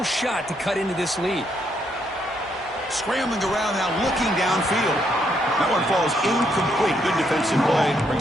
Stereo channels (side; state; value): both; normal; correlation 0.75